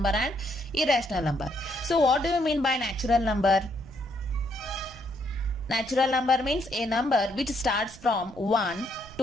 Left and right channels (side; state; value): right; noise; rumble, 20 dB below the sound